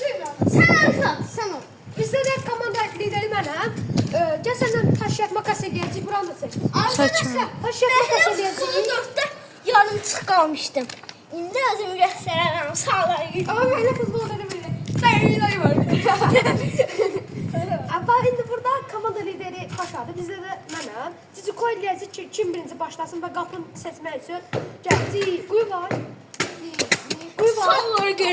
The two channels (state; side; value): identical; both; correlation 1.00